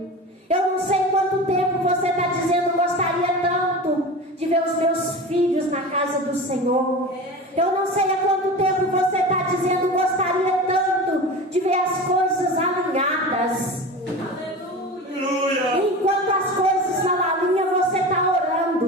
Eu não sei quanto tempo você está dizendo: gostaria tanto de ver os meus filhos na casa do Senhor. Eu não sei há quanto tempo você está dizendo: gostaria tanto de ver as coisas alinhadas. Enquanto as coisas não alinham, você está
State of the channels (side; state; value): both; normal; correlation 0.31